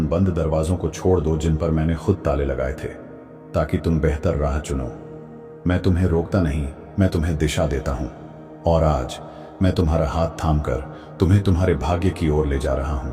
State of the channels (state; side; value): identical; both; correlation 1.00